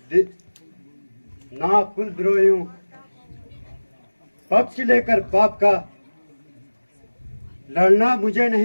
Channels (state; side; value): inverted; both; correlation -1.00